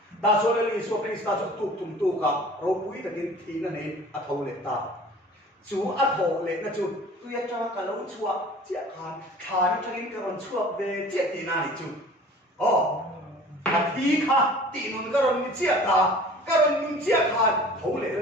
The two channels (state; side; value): normal; both; correlation 0.46